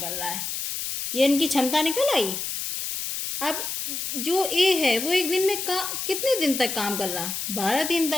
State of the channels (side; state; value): left; noise; hiss, 4 dB below the sound